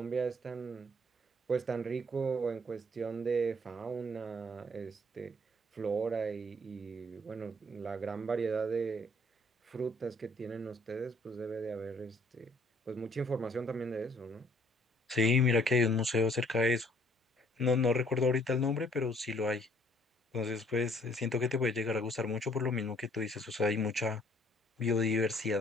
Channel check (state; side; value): normal; both; correlation 0.62